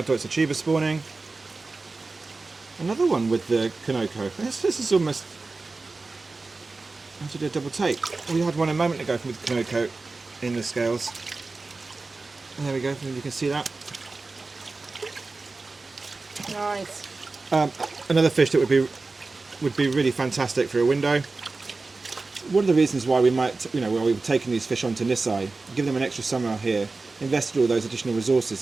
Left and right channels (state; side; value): quieter; left; 3.7 dB